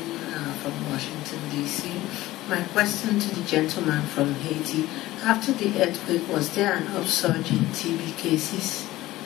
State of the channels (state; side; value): quieter; right; 16.9 dB